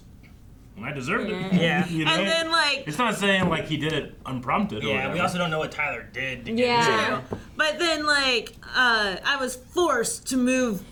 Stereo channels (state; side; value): identical; both; correlation 1.00